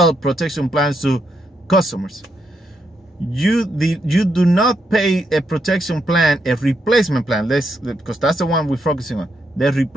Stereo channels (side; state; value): both; normal; correlation 0.80